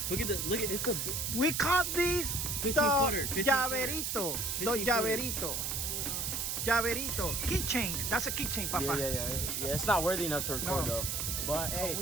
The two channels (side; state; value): right; noise; hiss, 1 dB below the sound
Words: Look at this. Look at it's the We caught these 15 the footer. 15 llaverito. The 15 llaverito. Llaverito. Keychain. That's a keychain, Papa. Yeah. It's not worthy enough to record though. But hey,